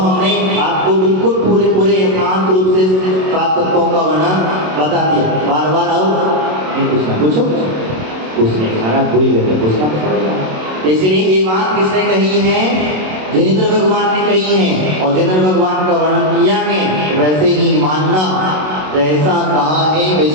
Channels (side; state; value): left; late; 27 ms